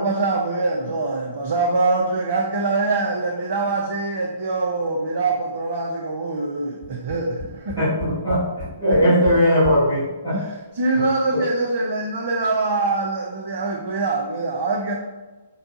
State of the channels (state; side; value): inverted; both; correlation -0.58